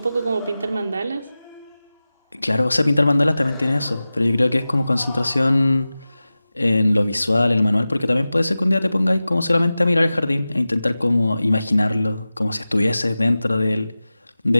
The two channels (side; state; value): both; inverted; correlation -0.96